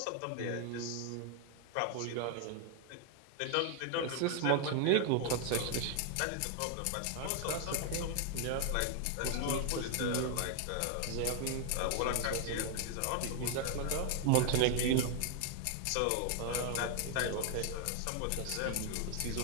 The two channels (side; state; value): both; different; correlation 0.00